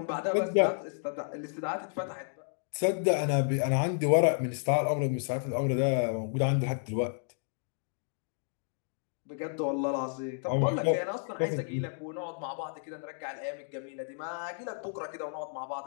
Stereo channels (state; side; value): silent; right; digital silence